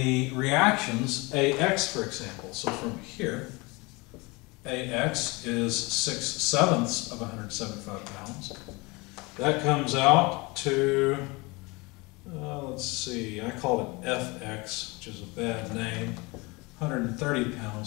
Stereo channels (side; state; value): right; quieter; 25.6 dB